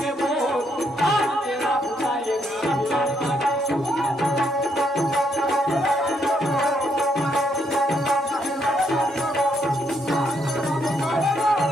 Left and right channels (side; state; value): both; normal; correlation 0.74